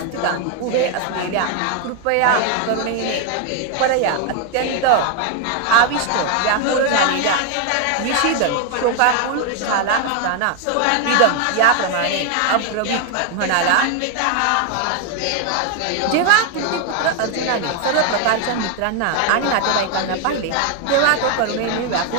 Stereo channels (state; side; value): different; both; correlation 0.01